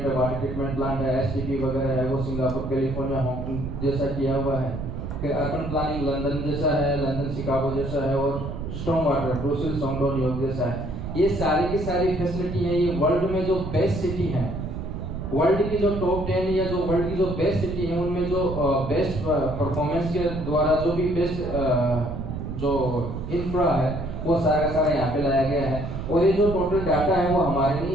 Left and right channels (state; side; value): noise; right; rumble, 6 dB below the sound